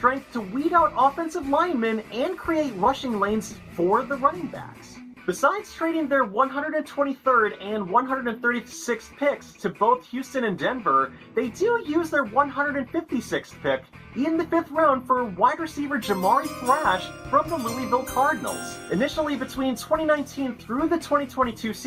to weed out offensive linemen and create rushing lanes for the running backs. Besides trading their 123rd and 136th picks to both Houston and Denver, they do use their 156th pick in the 5th round for wide receiver Jamari Thrash from the Louisville Cardinals. Initially between 2019 through the 2022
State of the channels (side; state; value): both; identical; correlation 1.00